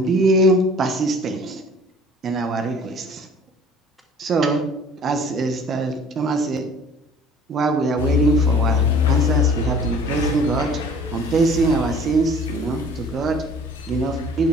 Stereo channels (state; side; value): normal; both; correlation 0.50